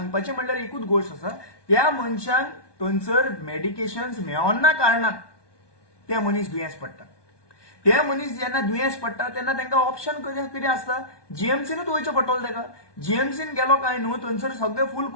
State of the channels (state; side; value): late; right; 1.2 ms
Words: म्हणल्यार एकूच गोष्ट आसा, त्या मनशांक थंयसर मेडिकेशन्स मेळना कारणान ते मनीस दुयेंस पडटा. ते मनीस जेन्ना दुयेंस पडटा तेन्ना तांकां ऑप्शन कितें आसता, GMCनूच वयचें पडटलें ताका. GMCन गेलो काय न्हू थंयसर सगळें फूल